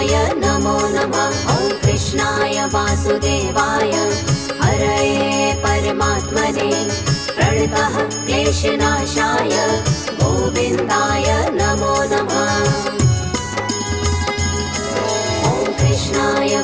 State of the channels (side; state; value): right; noise; hum, 24 dB below the sound